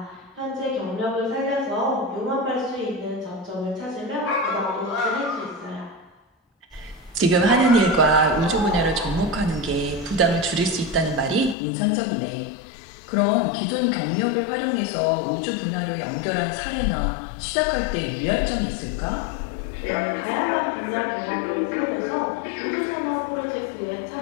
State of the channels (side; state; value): right; drops out; at 11.6 s